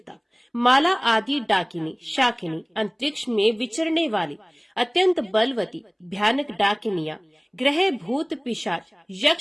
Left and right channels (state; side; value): identical; both; correlation 1.00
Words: माला आदि डाकिनी, शाकिनी, अंतरिक्ष में विचरने वाली अत्यंत बलवती भयानक डाकिनियां, ग्रह, भूत, पिशाच,